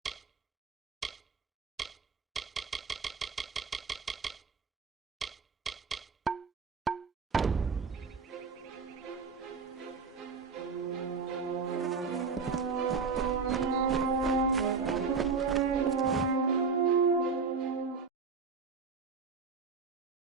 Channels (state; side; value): quieter; left; 5.1 dB